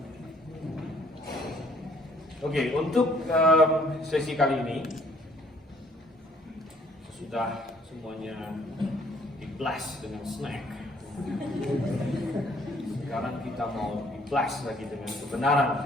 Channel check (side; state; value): both; normal; correlation 0.62